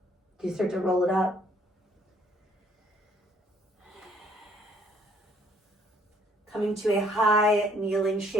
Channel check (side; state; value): both; normal; correlation 0.63